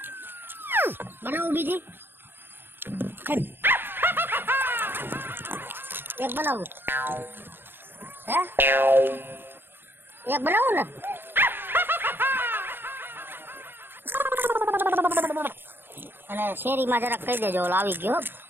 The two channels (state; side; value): late; left; 0.10 ms